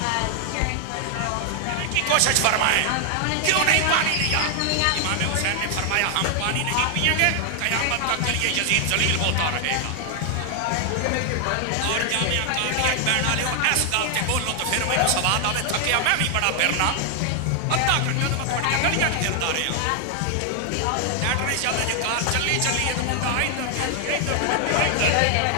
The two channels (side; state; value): both; different; correlation 0.00